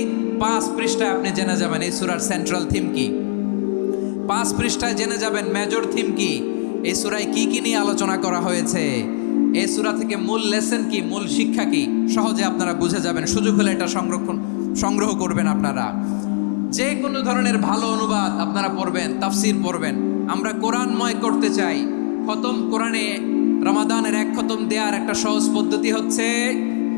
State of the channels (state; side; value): silent; right; digital silence